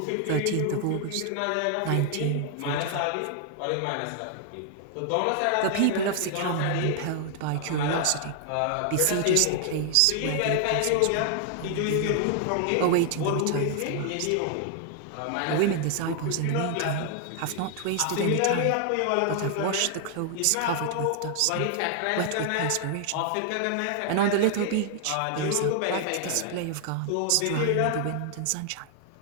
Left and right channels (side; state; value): both; different; correlation 0.00